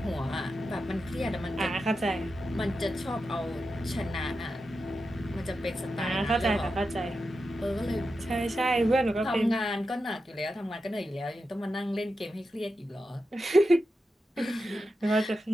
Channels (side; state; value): both; normal; correlation 0.89